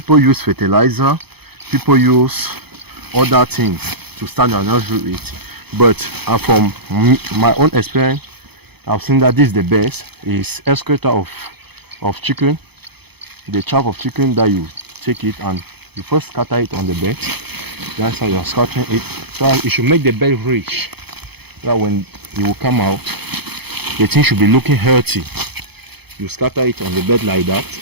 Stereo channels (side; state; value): left; late; 0.97 ms